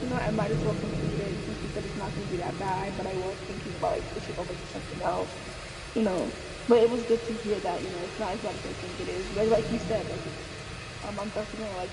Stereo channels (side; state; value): both; identical; correlation 1.00